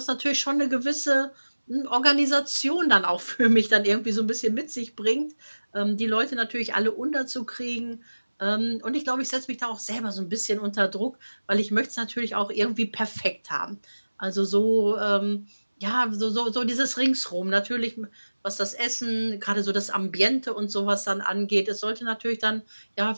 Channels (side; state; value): both; inverted; correlation -1.00